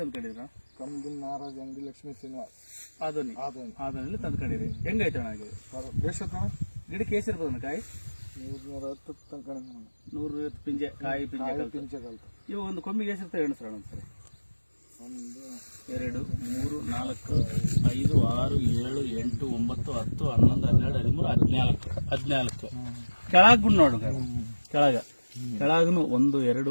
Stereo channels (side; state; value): both; inverted; correlation -1.00